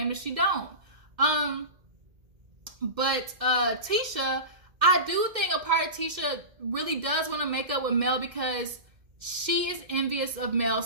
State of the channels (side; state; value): left; late; 2.1 ms